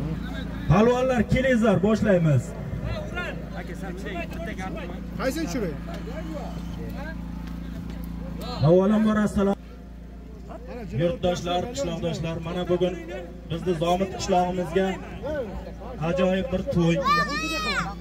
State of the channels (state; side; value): identical; both; correlation 1.00